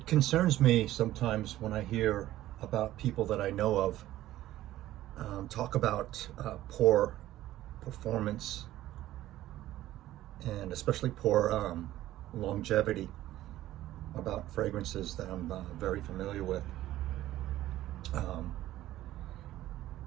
concerns me sometimes when I hear about people that I know of talk about poor performance and especially poor longevity about fragrances that I'm very familiar with. Um,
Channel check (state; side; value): quieter; left; 14.5 dB